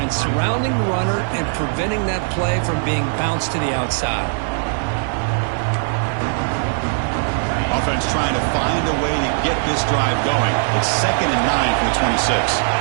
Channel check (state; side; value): silent; left; 59 dB below the other